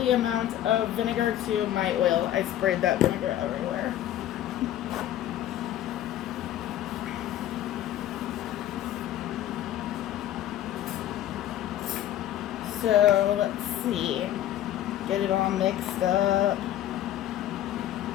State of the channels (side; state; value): right; quieter; 12.3 dB